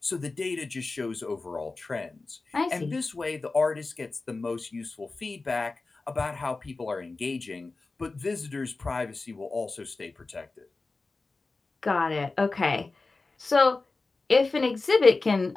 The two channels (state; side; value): quieter; right; 3.6 dB